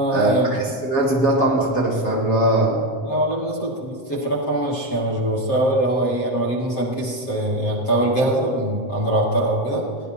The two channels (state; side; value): late; right; 7.5 ms